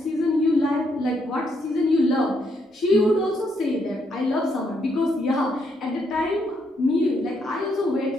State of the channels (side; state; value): both; normal; correlation 0.75